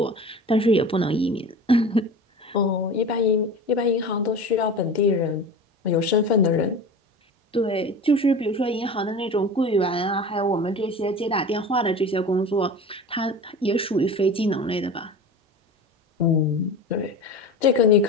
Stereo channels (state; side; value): normal; both; correlation 0.34